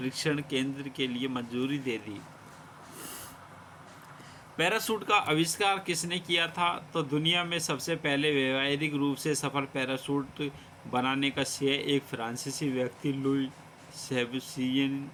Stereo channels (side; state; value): both; identical; correlation 1.00